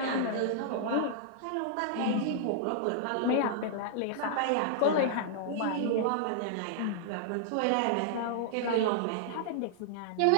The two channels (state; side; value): different; both; correlation -0.01